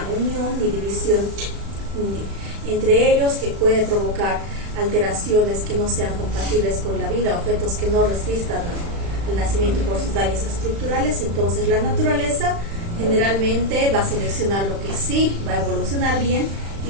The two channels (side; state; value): left; late; 35 ms